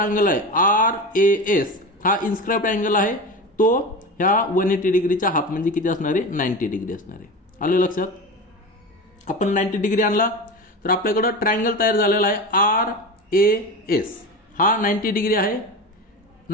आहे आर ए एस हा इन्स्क्राइब्ड अँगल आहे, तो ह्या 180 डिग्रीच्या हाफ म्हणजे किती असणार आहे? 90 डिग्री असणार आहे. आलं लक्षात? आपण 90 डिग्री आणला तर आपल्याकडं ट्रायंगल तयार झालेला आहे आर ए एस. हा 90 डिग्री आहे.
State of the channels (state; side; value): normal; both; correlation 0.27